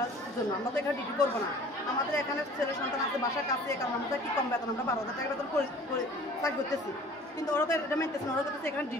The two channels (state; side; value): normal; both; correlation 0.48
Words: জন্য, আমরা তো এখানে ডিউটি করবো না। আমাদের এখানে ছেলে সন্তান আছে, বাসার কাছে, কারণ আমাদের কি কম বেতন, আমরা 12,000 টাকা বেতন চাকরি করতেছি, কিন্তু ওরা তো এটা মানতেছে না। ওরা বলতেছে এখানে